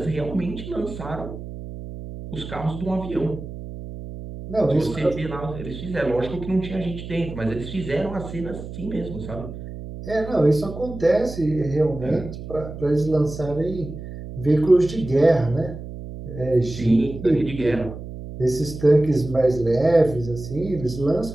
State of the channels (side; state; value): right; noise; hum, 11 dB below the sound